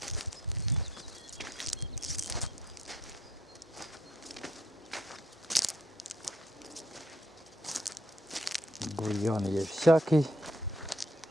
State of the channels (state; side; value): normal; both; correlation 0.68